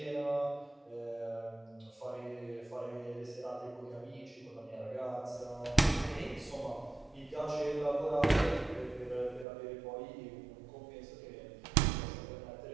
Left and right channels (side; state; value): left; drops out; at 9.5 s